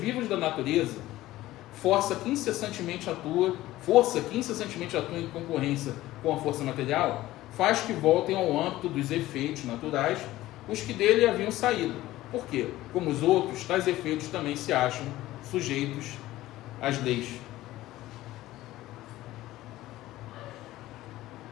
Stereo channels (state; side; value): quieter; right; 16.2 dB